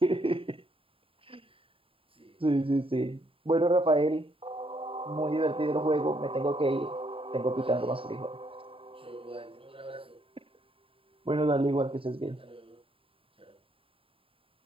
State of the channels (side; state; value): left; late; 0.27 ms